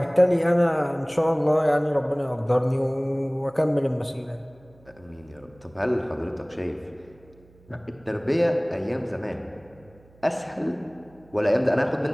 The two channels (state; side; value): noise; right; hum, 28 dB below the sound